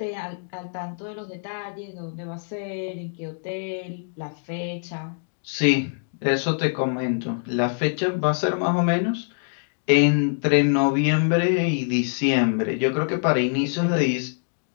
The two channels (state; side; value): silent; right; digital silence